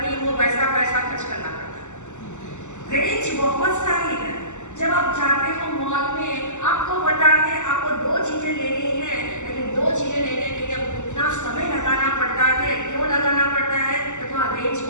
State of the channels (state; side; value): late; right; 0.84 ms